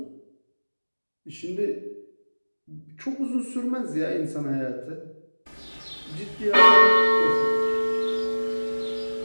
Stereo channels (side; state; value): both; inverted; correlation -1.00